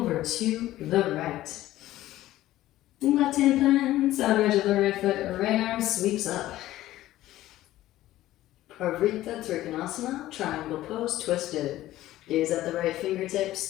to the right. Left hand plants, outer edge of the right foot, right arm sweeps up. Parvrita Trikonasana, triangle pose, twisted. Gaze at the right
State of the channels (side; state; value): right; quieter; 15.0 dB